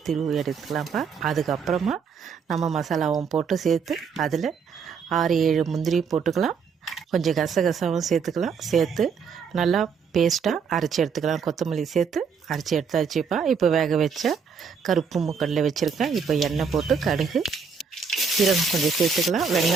திருவி எடுத்துக்கலாம்ப்பா. அதுக்கப்புறமா நம்ம மசாலாவும் போட்டு சேர்த்து அதில் 6-7 முந்திரி போட்டுக்கலாம். கொஞ்சம் கசகசாவும் சேர்த்துக்கலாம். சேர்த்து நல்லா பேஸ்ட்டாக அரைச்சி எடுத்துக்கலாம். கொத்தமல்லி சேர்த்து அரைச்சி எடுத்தாச்சுப்பா. இப்போ வேக வச்ச கருப்பு மூக்கடலை வச்சுருக்கேன். இப்போ எண்ணெய் போட்டு கடுகு, சீரகம் கொஞ்சம் சேர்த்துக்கலாம்.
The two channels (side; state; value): left; quieter; 6.0 dB